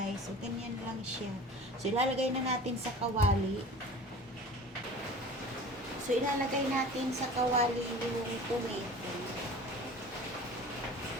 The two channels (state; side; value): normal; both; correlation 0.41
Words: So, ganyan lang siya. So, ilalagay na natin sa kawali. So, ilalagay natin sa kawali yung tomato.